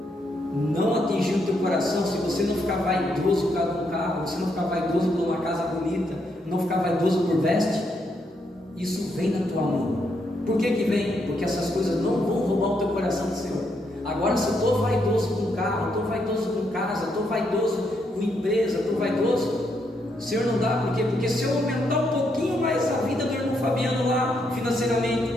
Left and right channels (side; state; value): both; normal; correlation 0.77